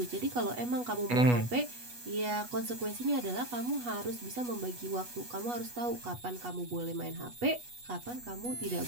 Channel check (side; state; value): left; late; 8.2 ms